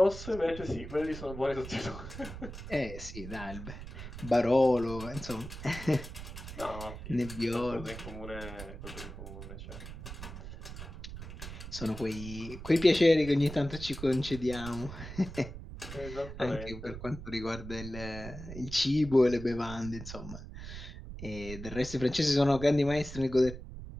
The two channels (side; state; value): right; noise; rumble, 11 dB below the sound